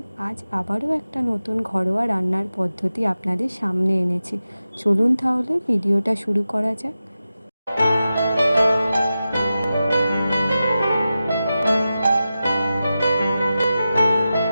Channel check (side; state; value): both; inverted; correlation -0.93